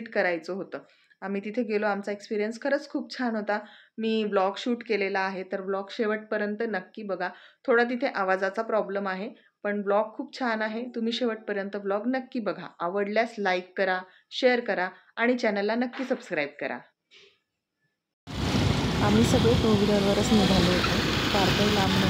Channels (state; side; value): identical; both; correlation 1.00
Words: करायचं होतं. आम्ही तिथे गेलो. आमचा एक्सपिरियन्स खरंच खूप छान होता. मी ब्लॉग शूट केलेला आहे, तर ब्लॉग शेवटपर्यंत नक्की बघा. थोडा तिथे आवाजाचा प्रॉब्लेम आहे, पण ब्लॉग खूप छान आहे. तुम्ही शेवटपर्यंत ब्लॉग नक्की बघा. आवडल्यास लाईक करा, शेअर करा आणि चॅनलला नक्की सबस्क्राईब करा. आम्ही सगळे टू व्हीलरवरच निघालो होतो. फार काही लांब